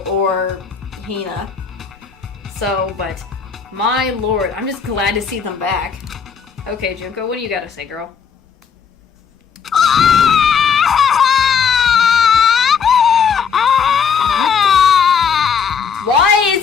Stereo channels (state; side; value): quieter; right; 6.6 dB